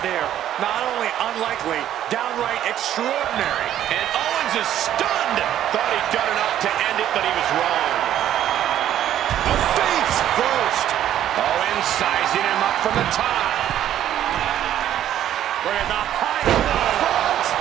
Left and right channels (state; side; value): quieter; left; 11.4 dB